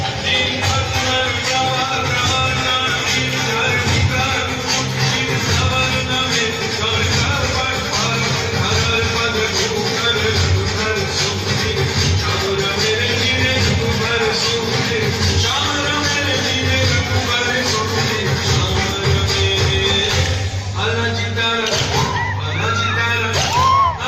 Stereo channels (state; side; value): identical; both; correlation 1.00